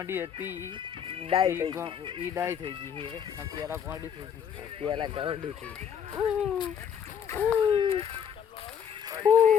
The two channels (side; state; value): right; quieter; 8.0 dB